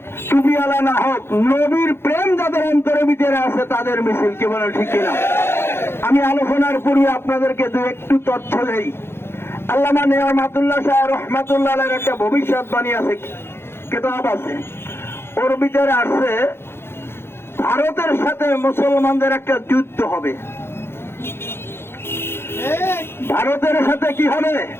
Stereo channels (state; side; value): late; right; 0.11 ms